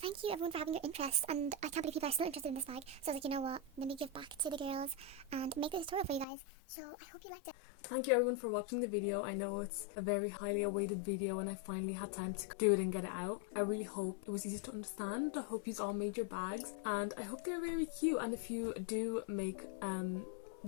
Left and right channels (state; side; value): drops out; right; at 6.2 s